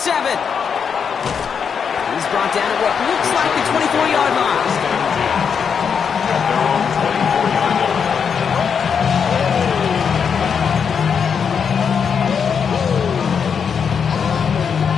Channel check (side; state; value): right; quieter; 6.7 dB